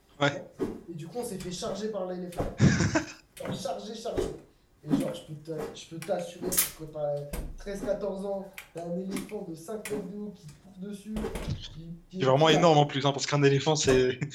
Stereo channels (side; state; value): both; identical; correlation 1.00